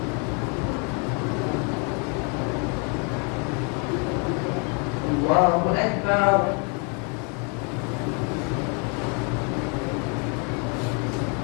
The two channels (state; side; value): quieter; right; 35.9 dB